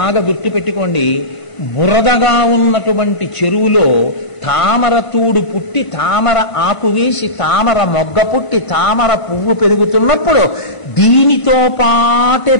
గుర్తుపెట్టుకోండి, బురదగా ఉన్నటువంటి చెరువులో తామర తూడు పుట్టి తామర ఆకు వేసి తామర మొగ్గ పుట్టి తామర పువ్వు పెరుగుతున్నప్పుడు దీనితో పాటే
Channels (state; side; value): late; right; 1.0 ms